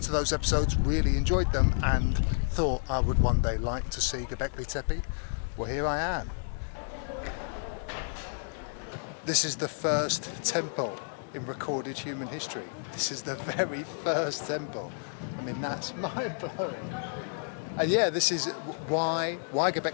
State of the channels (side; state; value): right; silent; digital silence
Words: to those episodes, really enjoyed them, and thought I would one day like to see Gobekli Tepe. Well, here I am. This is the first temple in recorded human history. This is the very first temple. I mean, that's mind-blowing. And yeah, this is why